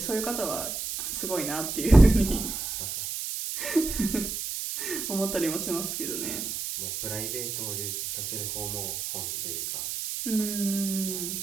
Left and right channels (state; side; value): noise; right; hiss, 4 dB below the sound